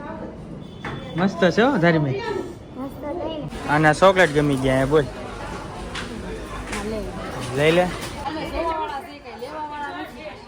મસ્ત છે હો ધાર્મિક. અને ચોકલેટ ગમી ગયા બોલ, લઈ લે.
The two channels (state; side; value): identical; both; correlation 1.00